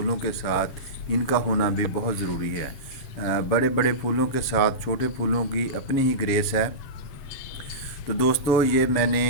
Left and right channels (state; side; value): late; right; 7.3 ms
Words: के साथ इनका होना भी बहुत ज़रूरी है। बड़े बड़े फूलों के साथ छोटे फूलों की अपनी ही ग्रेस है। तो दोस्तों, ये मैंने